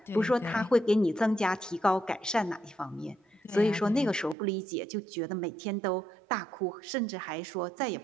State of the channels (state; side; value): drops out; left; at 4.4 s